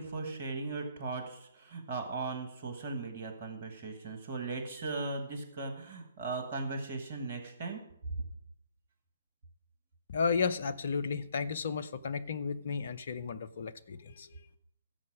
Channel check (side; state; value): both; inverted; correlation -0.65